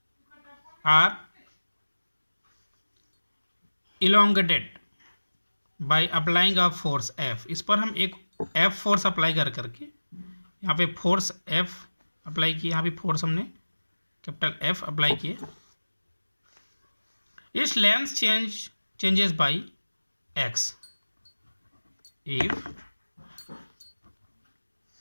or elongated by applying a force F. इस पर हम एक F फोर्स अप्लाई करके यहाँ पे फोर्स F अप्लाई किए, यहाँ पे फोर्स हमने कैपिटल F अप्लाई किए. Its length changes by x. If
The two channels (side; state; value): both; inverted; correlation -1.00